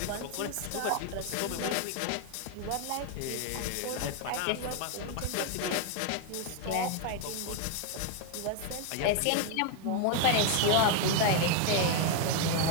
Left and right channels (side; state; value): both; different; correlation 0.01